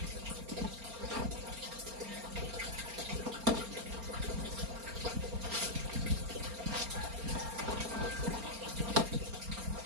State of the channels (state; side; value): late; left; 4.3 ms